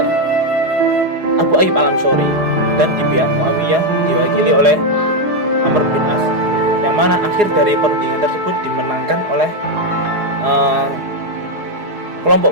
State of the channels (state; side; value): late; left; 4.8 ms